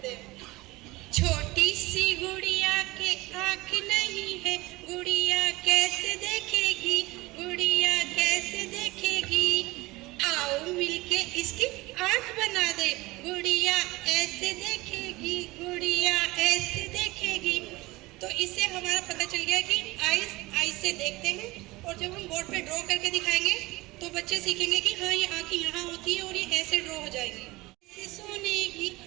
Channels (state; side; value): quieter; left; 20.8 dB